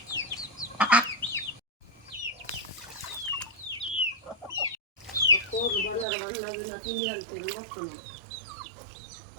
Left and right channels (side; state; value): left; drops out; at 6.1 s